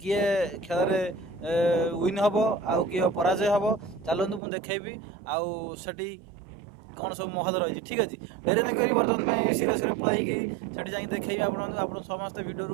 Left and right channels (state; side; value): drops out; left; at 4.4 s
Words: खेल रे विन हबो आ किए पराजय हबो। चलंतु मु देखैबी आ सेठी कौन सब महल रही ठीक अच्छे डेरी न करी बर्तमान सीरे सीरे पलैकी सेठी जाई देखैबी आपन समस्त